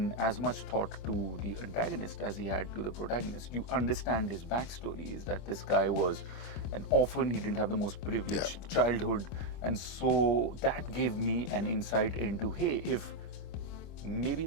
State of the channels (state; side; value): late; right; 25 ms